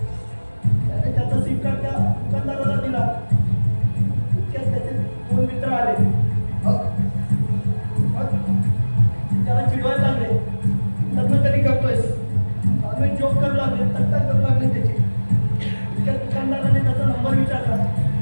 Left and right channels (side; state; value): both; inverted; correlation -1.00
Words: त्याने त्याचा सिम कार्ड त्या दुकानदाराला दिला. इतक्यात त्याचे 2 मित्र आले. मग मग त्याला चिडवायला लागले. लग्न कधी करतोयस? आम्ही जोक करू लागले, तक्ता करू लागले त्याची. इतक्यात दुकानदाराने त्याचा नंबर विचारला.